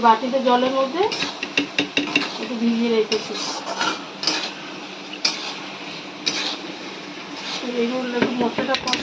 বাটিতে জলের মধ্যে একটু ভিজিয়ে রেখেছি। এইগুলো একটু মশলাটা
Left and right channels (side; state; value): both; identical; correlation 1.00